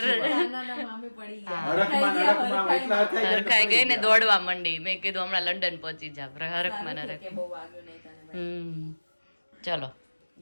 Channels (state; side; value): inverted; both; correlation -1.00